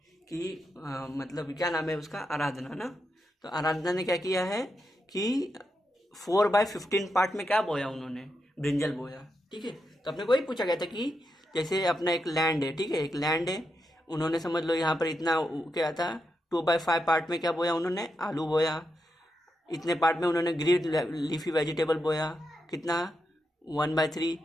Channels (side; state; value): both; normal; correlation 0.85